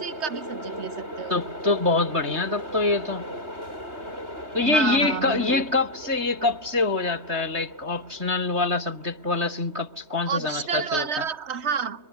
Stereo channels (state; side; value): late; left; 3.2 ms